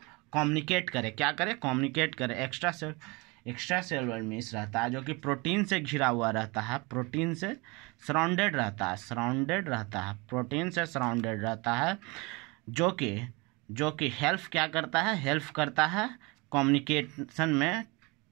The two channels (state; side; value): quieter; left; 26.5 dB